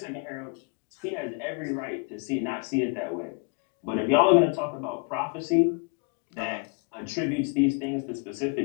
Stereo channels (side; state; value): right; quieter; 34.2 dB